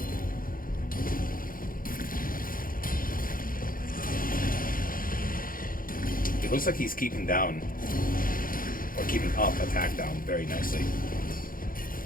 It looks like he's keeping down, or keeping up attack down very nicely.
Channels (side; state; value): right; late; 0.41 ms